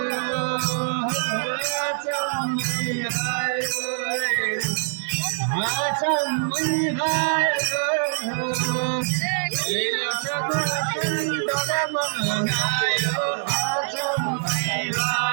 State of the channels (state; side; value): silent; left; digital silence